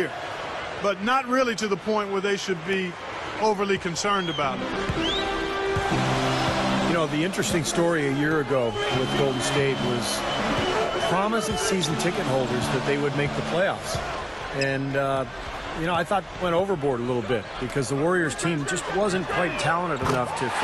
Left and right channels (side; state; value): both; identical; correlation 1.00